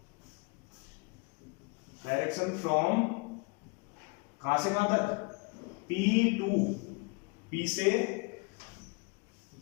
फ्रॉम कहां से कहां तक, P टू P से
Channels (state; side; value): quieter; right; 30.9 dB